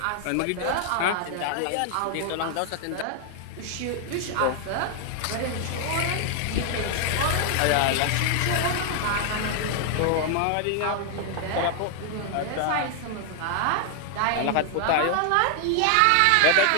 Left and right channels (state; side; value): different; both; correlation 0.00